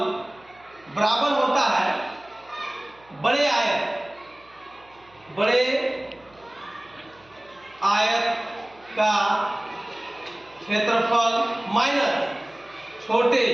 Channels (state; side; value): noise; right; hum, 30 dB below the sound